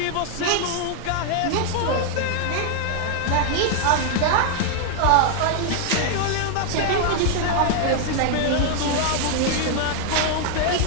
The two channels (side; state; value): both; different; correlation 0.00